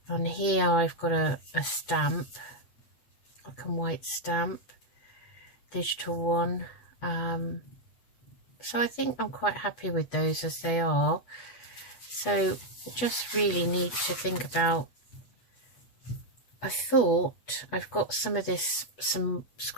On here I've got a stamp, black and white stamp, digital one. So I think I'm quite happy with those as they are. So just really need to think about, I thought I've got some of this, some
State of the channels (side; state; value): right; late; 8.1 ms